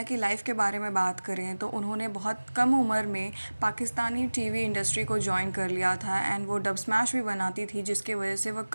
की life के बारे में बात करें तो उन्होंने बहुत कम उम्र में पाकिस्तानी टीवी इंडस्ट्री को ज्वाइन कर लिया था एंड वो डब स्मैश भी बनाती थी, जिसके वजह से वो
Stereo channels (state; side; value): inverted; both; correlation -1.00